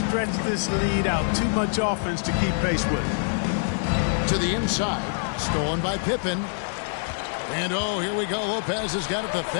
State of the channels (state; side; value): silent; right; 62 dB below the other